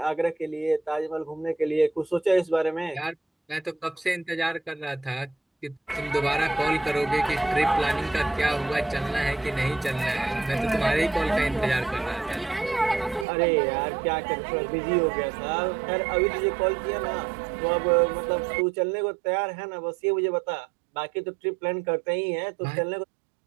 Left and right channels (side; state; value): left; drops out; at 13.2 s